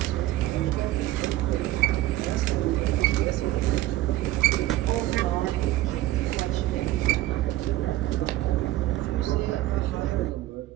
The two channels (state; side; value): quieter; left; 15.9 dB